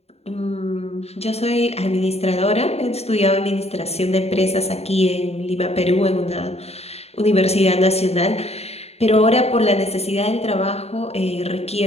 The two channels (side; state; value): right; late; 0.30 ms